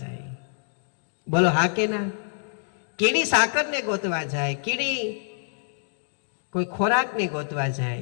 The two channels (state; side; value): silent; right; digital silence